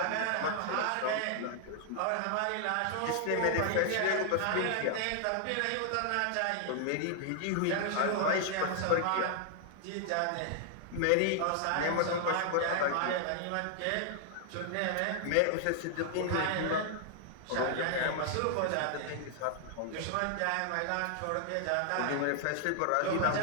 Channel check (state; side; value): different; both; correlation 0.00